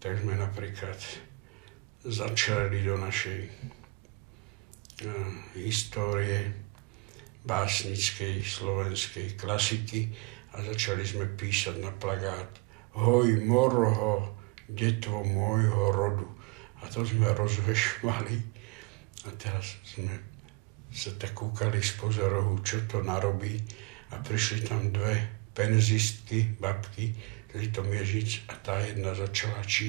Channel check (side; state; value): left; quieter; 27.4 dB